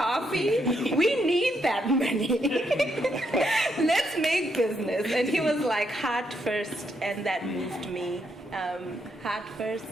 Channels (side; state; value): both; normal; correlation 0.77